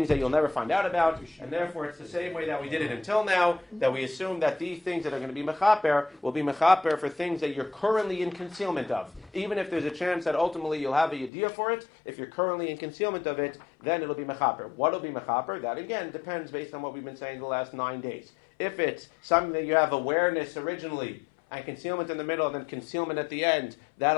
that you'll never find out about, and therefore it's the same way that we did it until now, that we assume that these things that are going to be mechaper will be mechaper for things that you're currently in concealment of. Even if there's a chance that ultimately you'll have a yediyah for it, if you're currently in concealment of it, then it'll be mechaper. What will be mechaper? That again depends based on what we've been saying the last 9 days. If it's something that you have awareness originally, and concealment in the middle, and then concealment at the end,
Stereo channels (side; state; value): right; drops out; at 11.3 s